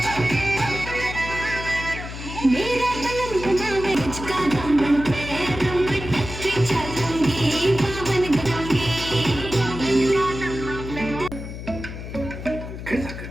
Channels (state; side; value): noise; left; hum, 9 dB below the sound